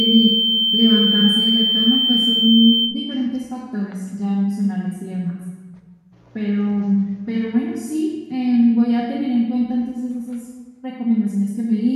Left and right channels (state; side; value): identical; both; correlation 1.00